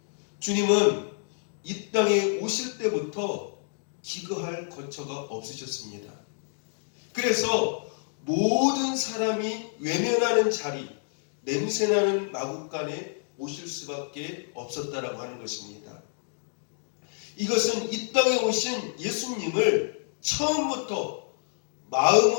주님은 이 땅에 오실 때부터 기거할 거처가 없으셨습니다. 그래서 모든 사람이 외면하는 자리, 냄새나는 마국간에 오실 수밖에 없었다라고 하는 것입니다. 이것은 이 땅에 오신 예수님을 처음부터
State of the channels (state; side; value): silent; right; digital silence